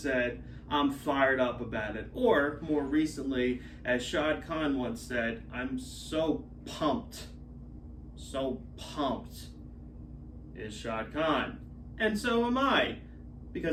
I'm fired up about it. Or, more recently, as Shad Khan once said, I'm so pumped is Shad Khan. And so am I,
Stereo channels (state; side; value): identical; both; correlation 1.00